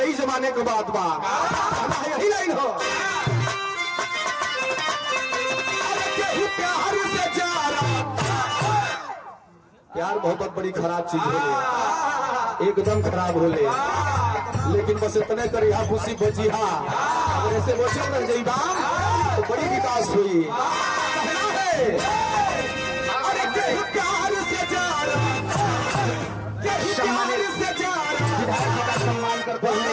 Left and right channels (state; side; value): identical; both; correlation 1.00